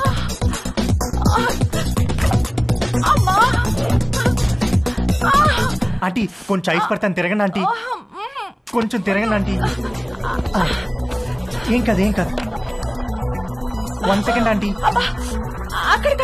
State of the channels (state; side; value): identical; both; correlation 1.00